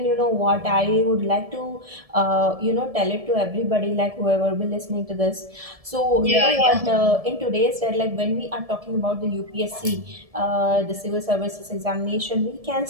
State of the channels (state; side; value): late; left; 1.7 ms